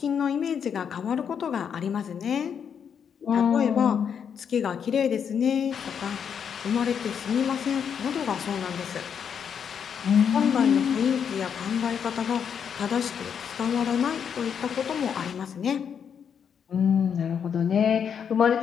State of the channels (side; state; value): right; quieter; 7.5 dB